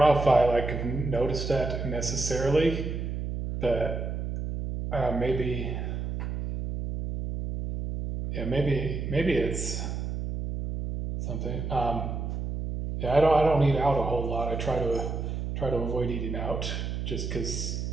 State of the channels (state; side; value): noise; right; hum, 4 dB below the sound